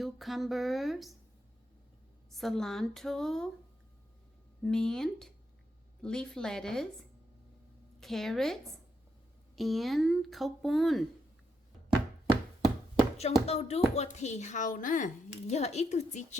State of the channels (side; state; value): both; normal; correlation 0.80